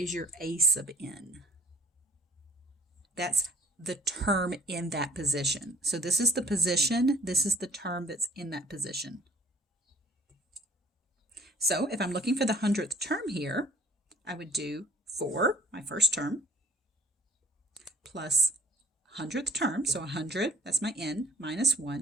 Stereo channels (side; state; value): both; normal; correlation 0.55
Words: your a sub n. That's the term in that position. So this is the position, this is the term that's in that position. So if I'm looking for the 100th term here, I would do 4, my first term, plus 100th term, so 100, that's my n, minus